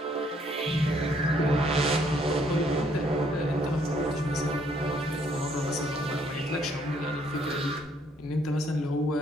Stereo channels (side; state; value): both; normal; correlation 0.67